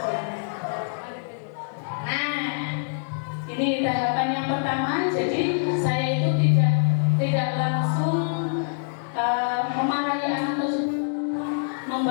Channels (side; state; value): right; silent; digital silence